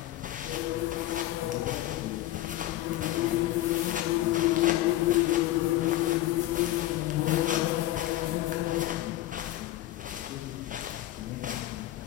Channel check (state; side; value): quieter; right; 15.2 dB